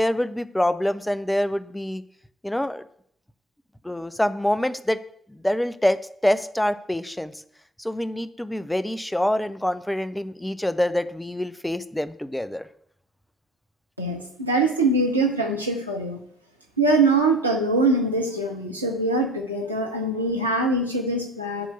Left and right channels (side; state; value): both; normal; correlation 0.49